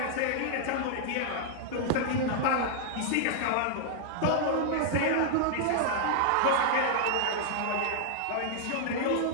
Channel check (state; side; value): different; both; correlation -0.01